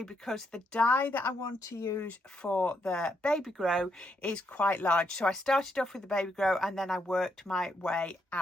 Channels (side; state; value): both; normal; correlation 0.78